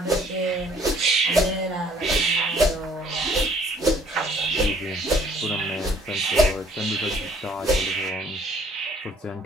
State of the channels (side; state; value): both; normal; correlation 0.59